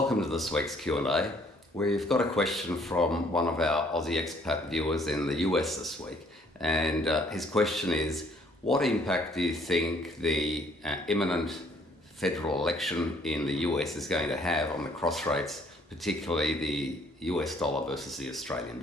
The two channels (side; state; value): both; normal; correlation 0.63